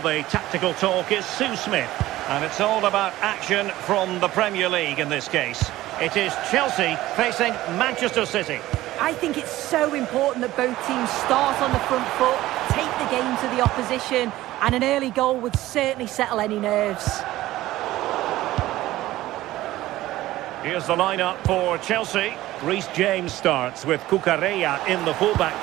tactical talk, is Sue Smith. And it's all about action from the Premier League in this case. It is Chelsea facing Manchester City. I think it's so important that both teams start on the front foot, take the game to the opposition, and an early goal would certainly settle any nerves. Here's the lineup for Chelsea. Reece James starts with Cucurella in the fullback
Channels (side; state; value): left; quieter; 16.1 dB